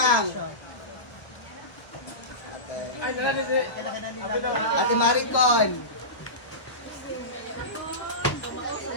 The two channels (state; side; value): late; right; 1.3 ms